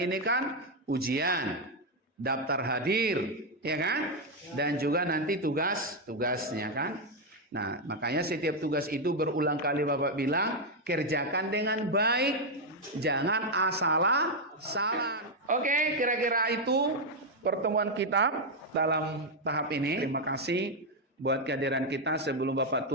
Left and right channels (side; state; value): both; normal; correlation 0.02